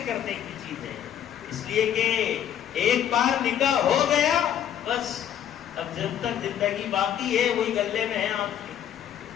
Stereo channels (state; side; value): quieter; right; 9.9 dB